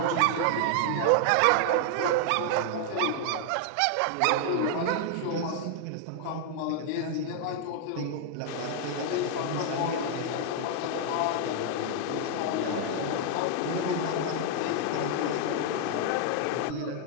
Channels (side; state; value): both; different; correlation 0.00